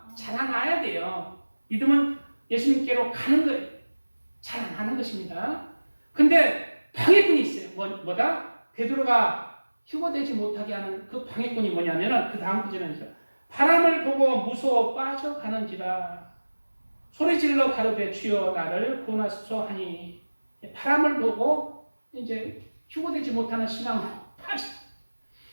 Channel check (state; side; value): inverted; both; correlation -1.00